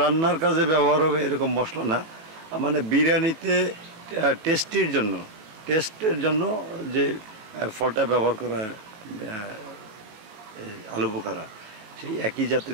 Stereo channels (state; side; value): late; left; 18 ms